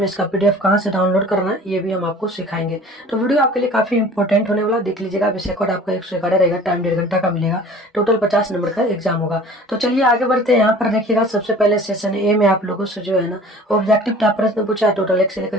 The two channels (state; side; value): normal; both; correlation 0.45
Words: इसका पीडीएफ कहाँ से डाउनलोड करना है ये भी हम आपको सिखाएंगे। तो वीडियो आपके लिए काफी इंपॉर्टेंट होने वाला, देख लीजिएगा। विषय कोड आपका 111 रहेगा, टाइम 1.5 घंटा का मिलेगा, टोटल 50 नंबर का एग्जाम होगा। तो चलिए आगे बढ़ते हैं। यहाँ पर देखिएगा, सबसे पहले सेशन ए में आप लोगों से जो है ना ऑब्जेक्टिव टाइप प्रश्न पूछा है। टोटल 1 से लेकर